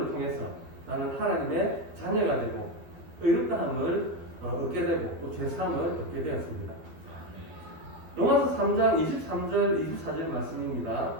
통해서 나는 하나님의 자녀가 되고 의롭다함을 얻게 되고 또 죄사함을 얻게 되었습니다. 로마서 3장 23절 24절 말씀입니다.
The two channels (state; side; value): late; left; 12 ms